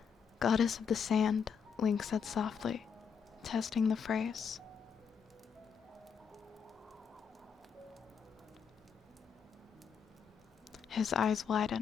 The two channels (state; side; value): quieter; right; 6.7 dB